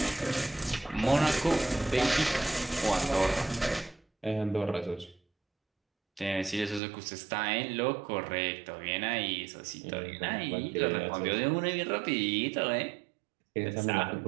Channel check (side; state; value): left; drops out; at 6.8 s